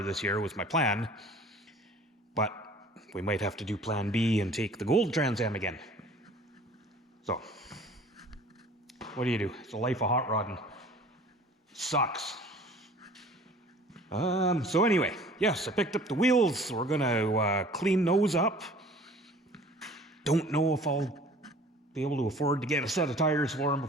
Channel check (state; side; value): normal; both; correlation 0.48